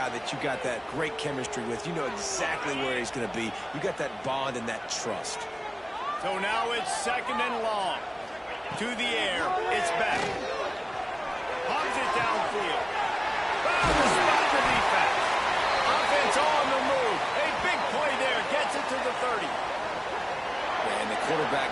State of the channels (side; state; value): both; identical; correlation 1.00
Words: that you got that great chemistry with. You know exactly where he's going to be. You got that bond and that trust. So now it's second and long. To the air. It's back. Pumps it downfield. Found the spot for defense. Offense on the move. A big play there. Gets it to the 30. And the